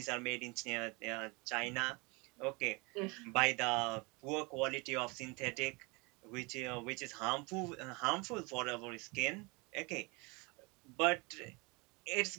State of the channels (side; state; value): left; quieter; 28.1 dB